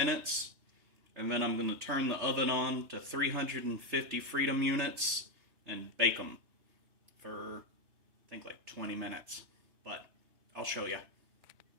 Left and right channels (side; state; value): left; late; 3.0 ms